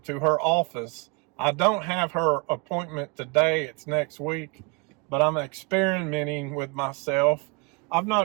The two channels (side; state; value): left; quieter; 29.5 dB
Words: to her office, I don't have her appointment today, it's next week, but I'm experimenting with myself. I've